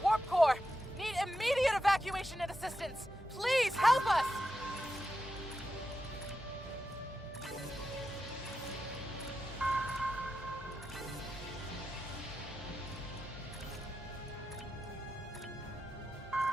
warp core! Need immediate evacuation and assistance! Please help us!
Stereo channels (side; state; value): both; normal; correlation 0.89